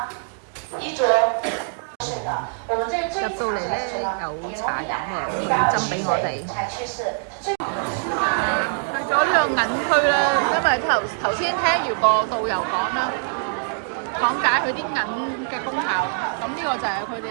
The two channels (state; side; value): silent; left; digital silence